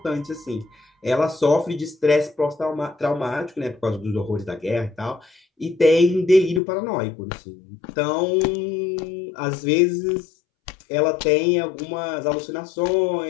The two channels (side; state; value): right; drops out; at 6.6 s